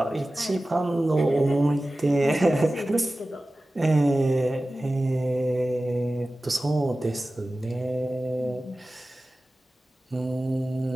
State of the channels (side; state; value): both; normal; correlation 0.96